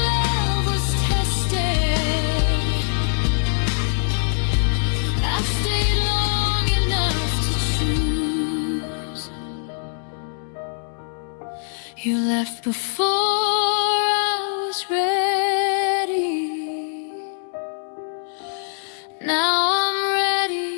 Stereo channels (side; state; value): right; silent; 64 dB below the other